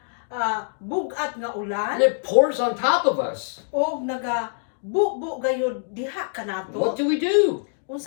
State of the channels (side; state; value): right; silent; digital silence